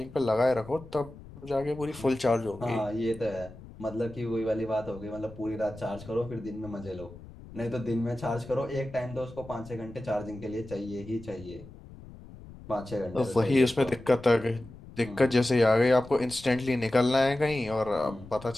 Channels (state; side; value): noise; left; rumble, 18 dB below the sound